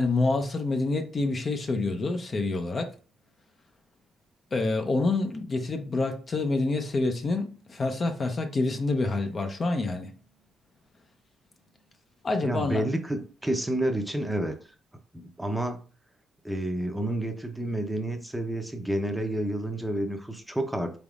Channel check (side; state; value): both; normal; correlation 0.84